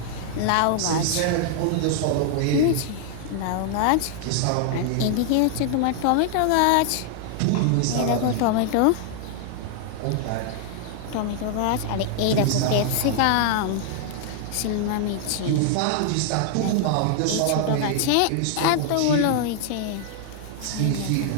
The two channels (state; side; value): different; both; correlation 0.00